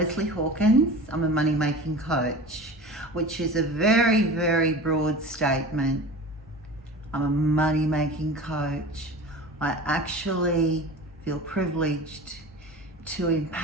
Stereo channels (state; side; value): normal; both; correlation 0.35